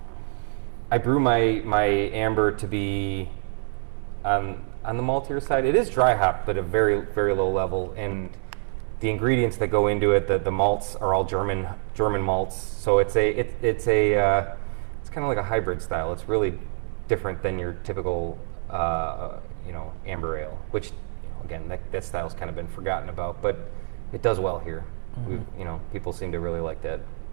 I brew my amber to be on the maltier side. It is dry hop, but a very, very low level, and the ingredients that go into it, the malts are all German malts. So it's kind of like a hybrid style. It's really different than your typical amber ale, which again that style's kind of been forgotten about, but it does well here. Mm-hmm. People seem to really like that.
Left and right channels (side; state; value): left; silent; 61 dB below the other